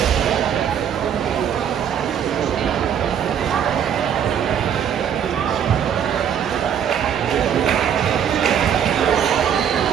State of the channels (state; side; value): quieter; left; 8.6 dB